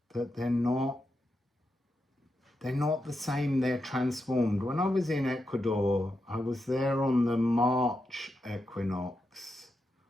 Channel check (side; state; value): both; normal; correlation 0.86